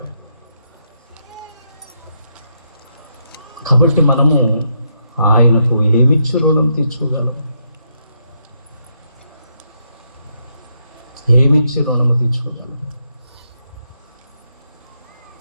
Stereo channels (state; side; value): inverted; both; correlation -0.78